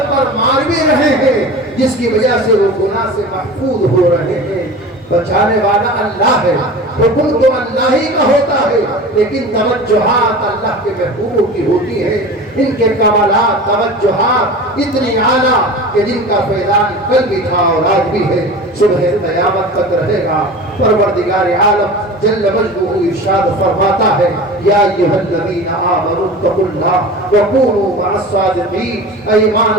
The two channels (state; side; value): normal; both; correlation 0.34